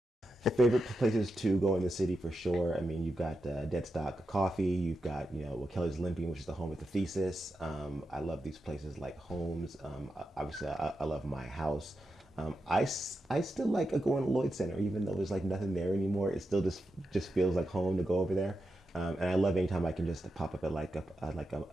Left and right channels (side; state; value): both; normal; correlation 0.88